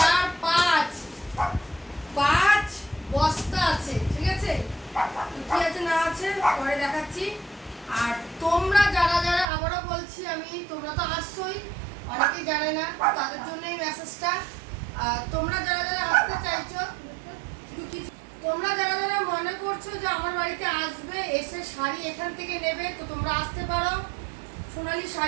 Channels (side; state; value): left; drops out; at 9.5 s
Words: 5 5 বস্তা আছে, ঠিক আছে? কি আছে না আছে পরে দেখাচ্ছি। আর তোমরা যারা যারা, আবারও বলছি আমি, তোমরা তো আসছোই, অনেকেই জানে না, তাদের জন্যই মেসেজটা। তোমরা যারা যারা আসতে চাইছো, তোমরা যারা যারা মনে করছো যে আমার বাড়িতে আসবে, এসে শাড়ি এখান থেকে নেবে, তো তোমরা আসতে পারো সোনালী